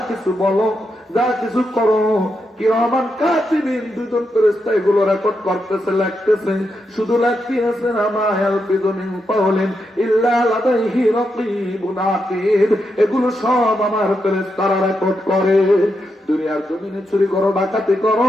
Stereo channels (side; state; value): both; normal; correlation 0.84